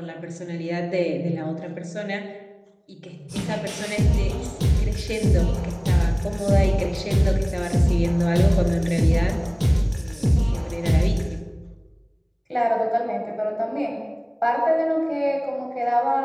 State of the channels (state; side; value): identical; both; correlation 1.00